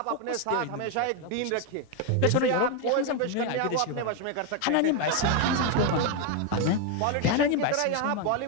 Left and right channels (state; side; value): different; both; correlation 0.01